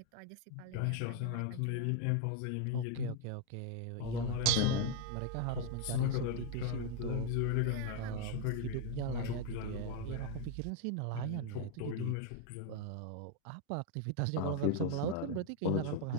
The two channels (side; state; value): both; different; correlation 0.01